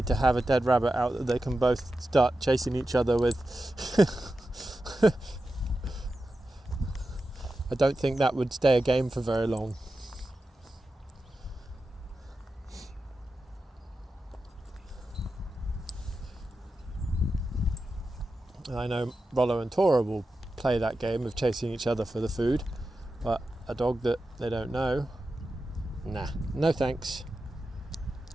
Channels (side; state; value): both; normal; correlation 0.91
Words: to have a dead rabbit out that they can both start chasing each other with. I don't think that would stay a game for very long. I know Rollo and Tora will play that game of chasing each other for the food, but a dog that they don't know, nah, no thanks.